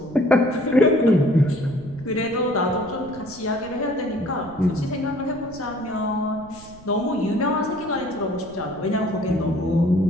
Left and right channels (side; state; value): right; noise; rumble, 20 dB below the sound